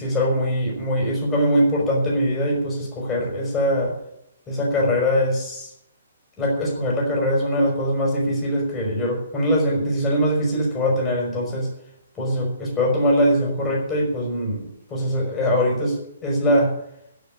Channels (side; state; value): both; inverted; correlation -0.53